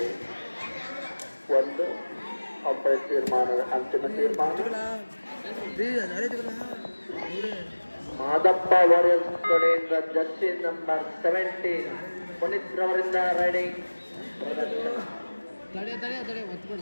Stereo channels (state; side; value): inverted; both; correlation -1.00